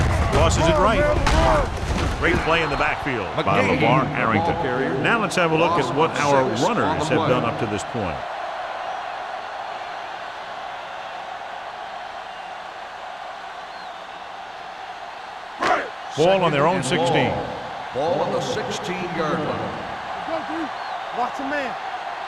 Tosses it right. Great play in the backfield by LeVar Arrington. Now let's have a look at what our runners have done up to this point. Ball on their own 16. Ball on the 16-yard line. Watch a man.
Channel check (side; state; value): both; identical; correlation 1.00